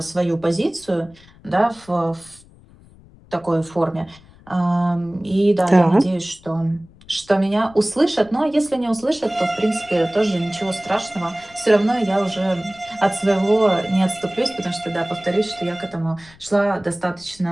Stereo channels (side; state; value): left; noise; rumble, 25 dB below the sound